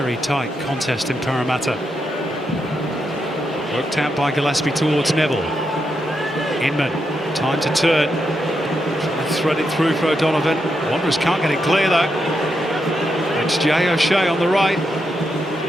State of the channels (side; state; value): both; normal; correlation 0.83